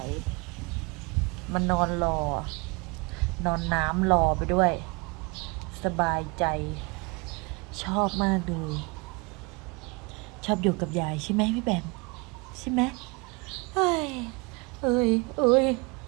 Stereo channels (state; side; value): quieter; left; 28.8 dB